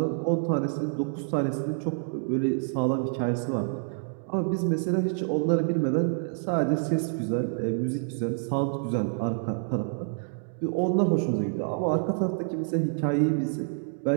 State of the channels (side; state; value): left; silent; digital silence